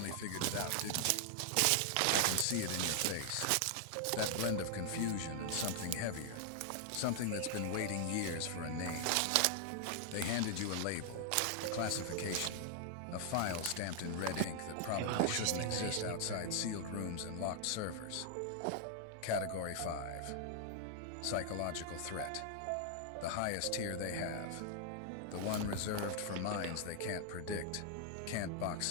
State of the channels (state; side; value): different; both; correlation 0.00